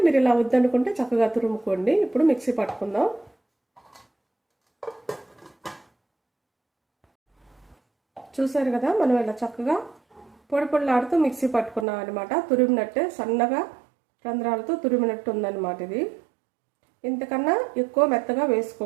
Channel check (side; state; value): left; drops out; at 11.9 s